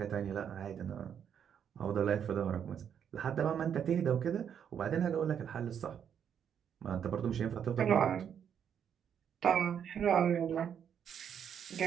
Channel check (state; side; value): quieter; left; 8.3 dB